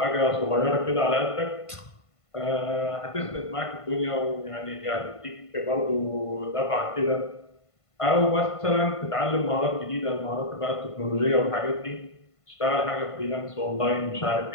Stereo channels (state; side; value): late; right; 1.5 ms